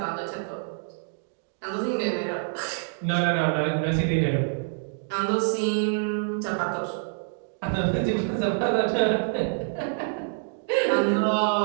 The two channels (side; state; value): left; silent; digital silence